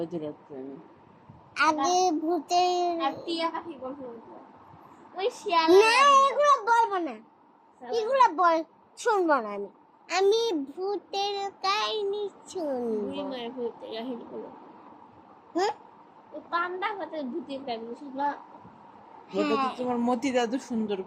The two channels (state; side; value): identical; both; correlation 1.00